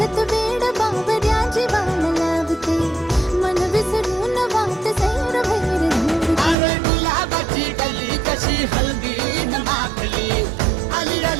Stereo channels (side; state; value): left; drops out; at 6.6 s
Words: वेड बावऱ्या जीवाला लावते मन विसरून वाट सैर भैर अरे गुलाबाची गल्ली कशी हल्दी न माखली आली